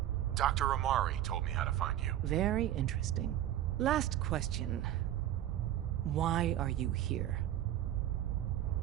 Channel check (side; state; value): left; quieter; 12.3 dB